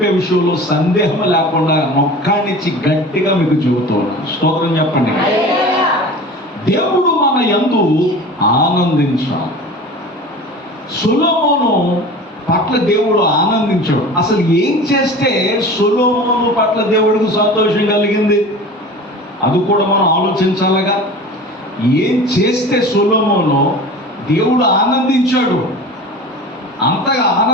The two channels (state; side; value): normal; both; correlation 0.37